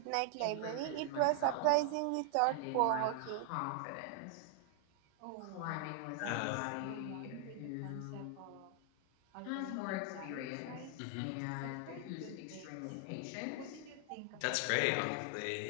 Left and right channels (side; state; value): both; different; correlation 0.00